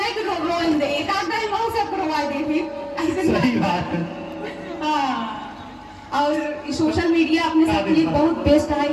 सही बात है। और सोशल मीडिया अपने साथ लिए बहुत बेस्ट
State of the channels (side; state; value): both; identical; correlation 1.00